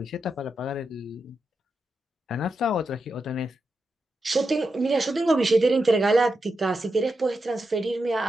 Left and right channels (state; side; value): normal; both; correlation 0.87